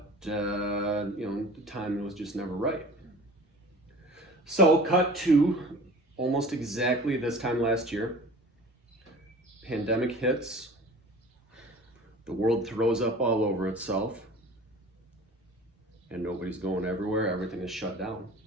the timing was just never right. So cut to almost exactly this time last year. Pandemic hits. The world throws up all over itself. and nobody's going everywhere. Everything is shut down.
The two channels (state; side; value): normal; both; correlation 0.42